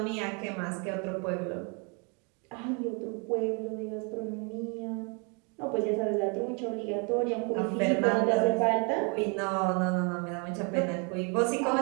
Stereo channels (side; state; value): left; quieter; 34.8 dB